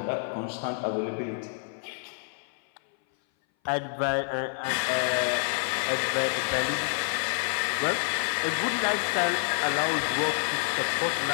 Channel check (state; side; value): silent; right; 57 dB below the other